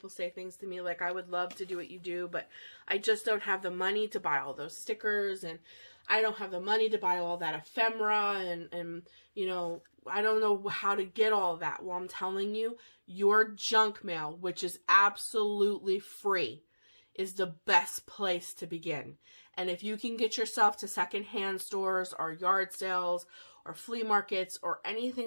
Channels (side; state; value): both; inverted; correlation -1.00